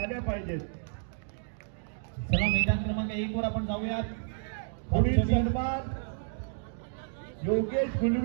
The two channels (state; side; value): silent; left; digital silence